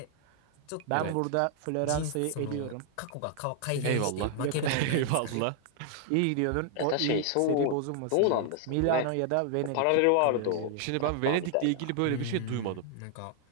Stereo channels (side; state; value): both; different; correlation 0.00